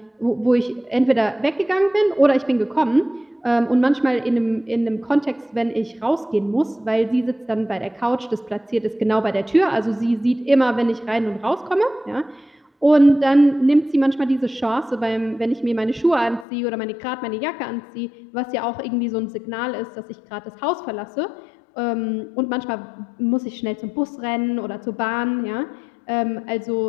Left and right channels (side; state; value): right; drops out; at 16.4 s